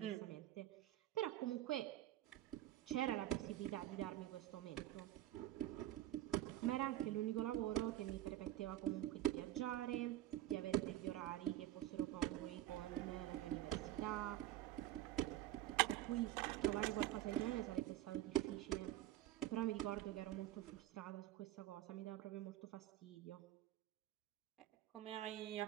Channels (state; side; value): quieter; left; 14.2 dB